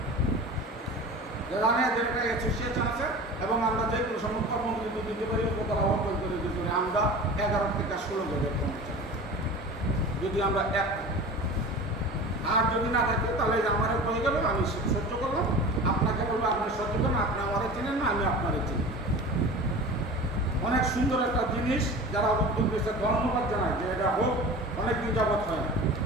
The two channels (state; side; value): normal; both; correlation 0.36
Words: যে একটা অ্যাসোসিয়েশন আছে এবং আমরা যে কোনো সময় কর্মবিরতি দিতে পারি, উপতলা অর্জন করে দিতে পারি। আমরা 11 থেকে 16 জনের কর্মচারী যদি আমরা এক, আর যদি না থাকে তাহলে আমার হয়ে গেল, আমি সহ্য করলাম, আপনাকে বলবো আপনি সহ্য করুন, আপনি আমারে চিনেন না, আমি আপনারে চিনি। অনেক সুন্দর একটা জিনিস, যারা উদ্যোগ দিয়েছে ধন্যবাদ জানায় যে এটা হোক, অনেকদিন যাবৎ হয় না।